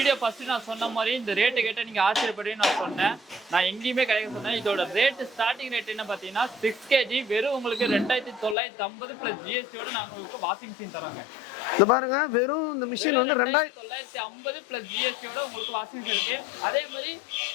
ஃபர்ஸ்ட் நான் சொன்ன மாதிரி இந்த ரேட்டு கேட்ட நீங்க ஆச்சரியப்படுவீங்கன்னு நான் சொன்னேன். நான் எங்கேயுமே கிடைக்க சொன்னேன். இதோட ரேட் ஸ்டார்டிங் ரேட் என்ன பாத்தீங்கன்னா 6 kg வெறும் உங்களுக்கு 2950 பிளஸ் ஜிஎஸ்டியோட நாங்க உங்களுக்கு வாஷிங் மிஷின் தரோங்க. இந்த பாருங்க வெறும் இந்த மிஷின் வந்து 2950 பிளஸ் ஜிஎஸ்டியோட உங்களுக்கு வாஷிங் மிஷின் இருக்கு. அதே மாதிரி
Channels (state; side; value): drops out; right; at 8.6 s